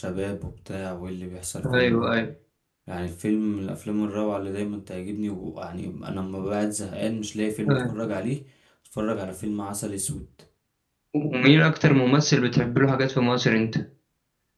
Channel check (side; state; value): both; identical; correlation 1.00